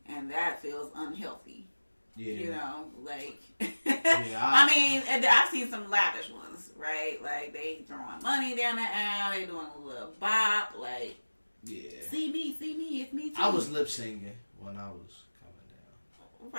and that feels unhealthy. Yeah. Like I mean, I've seen some lavish ones, right? Like they throwing money down the aisle, they doing a little bop, like see me, it's me too. I was lip singing when I was coming down.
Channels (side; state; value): both; inverted; correlation -1.00